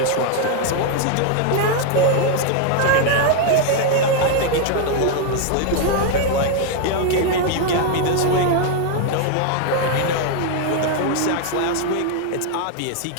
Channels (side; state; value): both; different; correlation 0.00